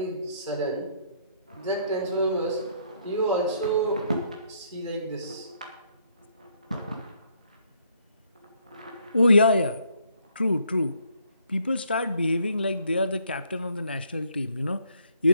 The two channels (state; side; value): inverted; both; correlation -0.69